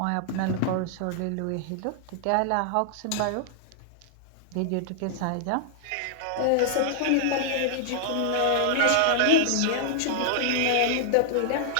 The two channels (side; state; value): both; different; correlation -0.01